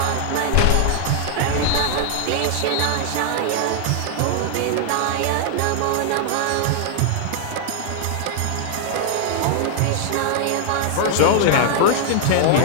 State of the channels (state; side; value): different; both; correlation 0.00